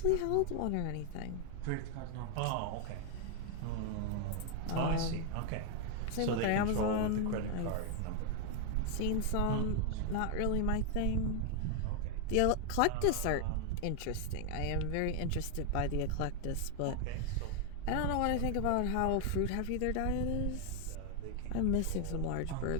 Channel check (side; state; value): both; different; correlation 0.00